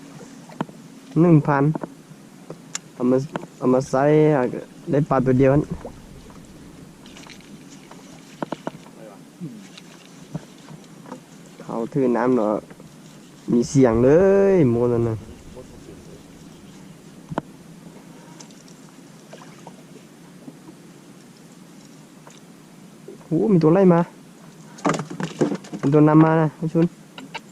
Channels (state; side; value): identical; both; correlation 1.00